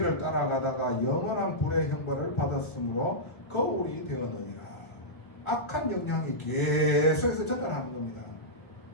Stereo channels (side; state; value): right; late; 1.6 ms